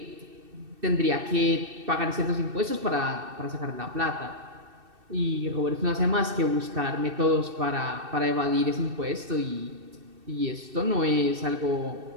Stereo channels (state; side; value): late; left; 2.6 ms